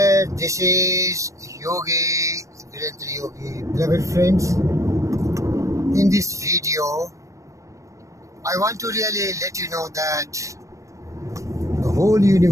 this is Yogi, Virendra Yogi. Beloved friends, in this video, I want to really let you know that the whole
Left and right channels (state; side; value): late; left; 0.15 ms